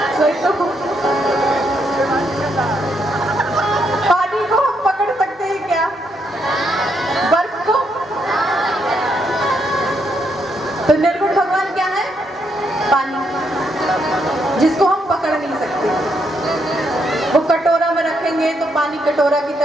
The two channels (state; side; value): normal; both; correlation 0.77